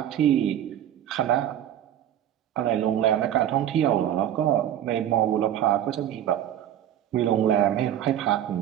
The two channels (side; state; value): left; quieter; 11.0 dB